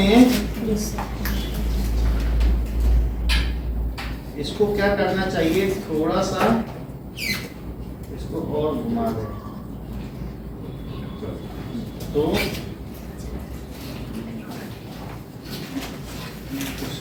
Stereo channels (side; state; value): both; identical; correlation 1.00